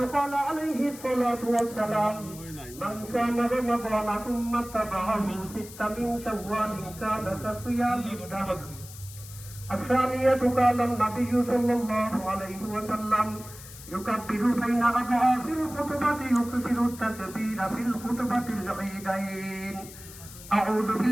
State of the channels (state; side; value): noise; left; hiss, 16 dB below the sound